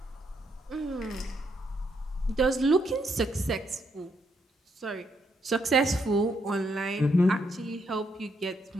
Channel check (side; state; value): both; normal; correlation 0.76